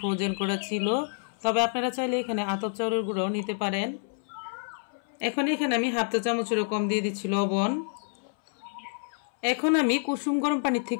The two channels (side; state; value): right; silent; 59 dB below the other